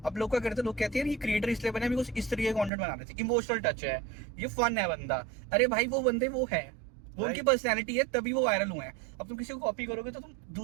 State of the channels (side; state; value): left; drops out; at 2.7 s